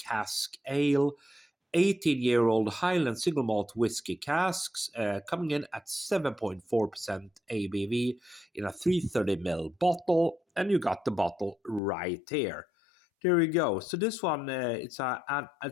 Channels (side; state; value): right; drops out; at 11.8 s